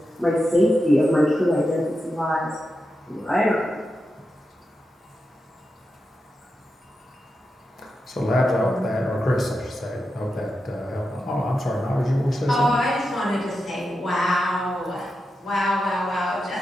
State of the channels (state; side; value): normal; both; correlation 0.89